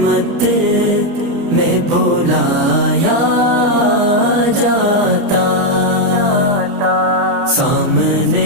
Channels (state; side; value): late; left; 29 ms